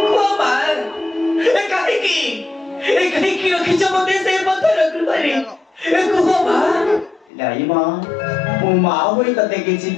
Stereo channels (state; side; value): drops out; right; at 7.2 s